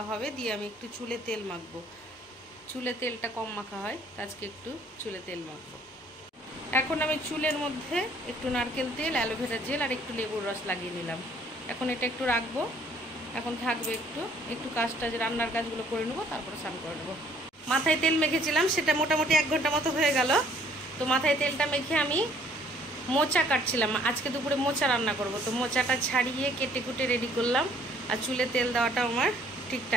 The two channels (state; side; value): normal; both; correlation 0.60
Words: হবে দিয়ে আমি একটু চুলে তেল মাখবো। চুলে তেলটা কম মাখা হয়, আজকে একটু চুলে তেল মাখবো। এখন আমি চুলের মধ্যে একটু নারকেল তেল, অ্যালোভেরা জেল আর একটু লেবুর রস লাগিয়ে নিলাম। এখন এটা একটু রাখবো, এখন থাকবে একটু কাজটা, যে রান্নার কাজগুলো করে নেবো, তারপরে স্নান করে নেবো। মাথায় তেল মেখেছিলাম, সেটা মোটামুটি 1 ঘন্টা মতো হয়ে গেল। তো মাথায় তেলটা মেখে আমি মোচা কাটছিলাম। আজকে দুপুরে মোচা রান্না করব, তো মোচাটা ছাড়িয়ে কেটে কুটে রেডি করলাম। আর চুলে তেল দেওয়াটা আমার ঠিক